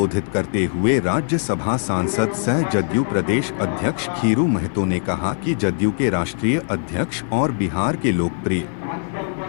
करते हुए राज्यसभा सांसद सह जदयू प्रदेश अध्यक्ष खीरू महतो ने कहा कि जदयू के राष्ट्रीय अध्यक्ष और बिहार के लोकप्रिय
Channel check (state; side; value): silent; right; 65 dB below the other